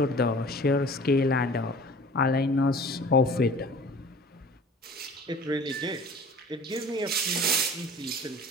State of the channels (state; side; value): normal; both; correlation 0.44